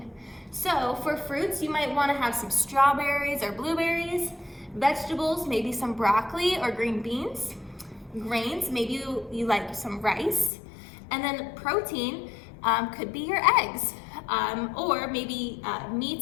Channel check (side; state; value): right; drops out; at 10.5 s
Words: So for fruits, you might want to have some strawberries or blueberries. Vegetables, maybe some broccoli or green beans. Grains, maybe you like some rice. And then protein could be your eggs. Or maybe